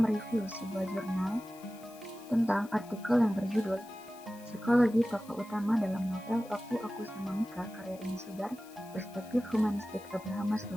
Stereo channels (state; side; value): noise; left; hiss, 22 dB below the sound